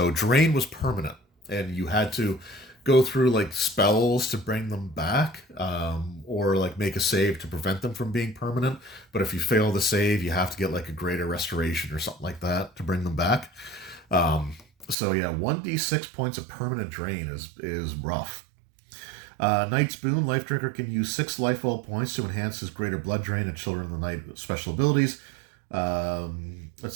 Drain was permanent, and you had to go through like spells to bring them back, or like make a save to prevent them from being permanent. But if you fail the save, you have to get like a greater restoration or something like that to bring them back. So yeah, 1d6 points of permanent drain is rough. Knight's Boon, Life Drinker can use 6 life well points to enhance his Greater Blood Drain and Children of the Night special abilities.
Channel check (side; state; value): left; drops out; at 15.0 s